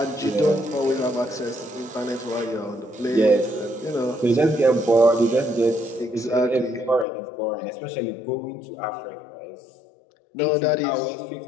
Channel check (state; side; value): drops out; right; at 7.1 s